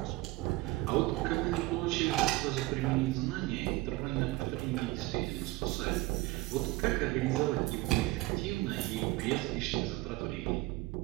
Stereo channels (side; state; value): left; quieter; 20.2 dB